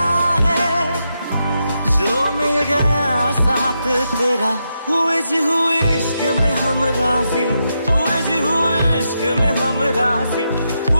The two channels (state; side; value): inverted; both; correlation -0.84